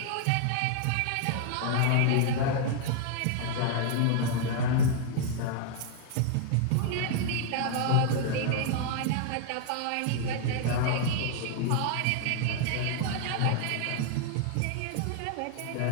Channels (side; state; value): both; different; correlation 0.00